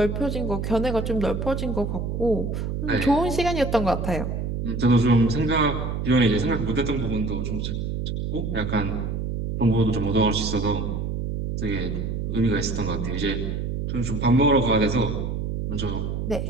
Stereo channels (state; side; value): noise; right; hum, 3 dB below the sound